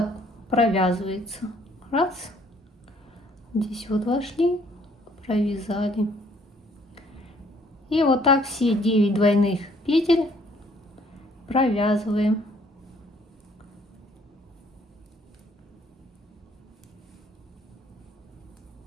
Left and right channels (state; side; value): normal; both; correlation 0.62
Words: провязывается. Раз. Здесь вот вошли, провязали. И вот так все 9 двойных петель провязываем.